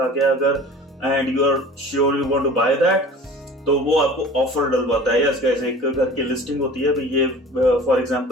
गया अगर and you are sure you want to buy that, तो वो आपको ऑफर डलवाता है। यस गाइस, एक घर की लिस्टिंग होती है, भाई ये फॉर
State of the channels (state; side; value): normal; both; correlation 0.42